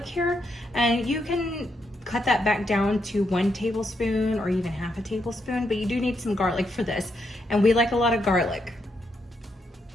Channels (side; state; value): both; normal; correlation 0.80